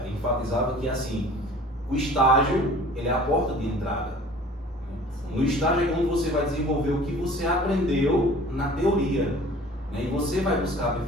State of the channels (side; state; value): both; normal; correlation 0.47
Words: enfatizavam que assim, o estágio ele é a porta de entrada. No estágio é quando você vai desenvolver o que você aprendeu na teoria, e você vai buscar